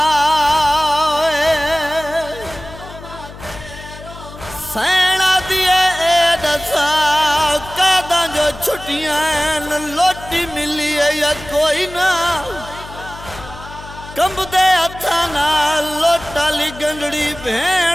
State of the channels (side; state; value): left; noise; hum, 16 dB below the sound